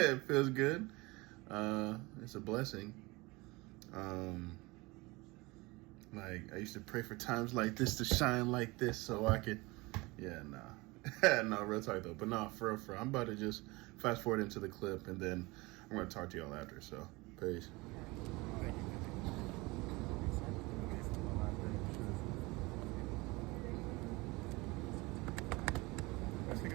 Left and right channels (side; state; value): left; quieter; 23.4 dB